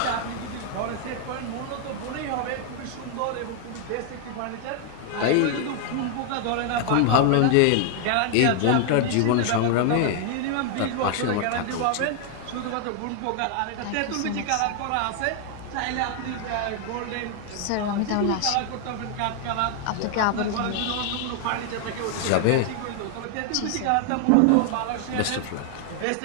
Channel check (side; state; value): both; different; correlation 0.00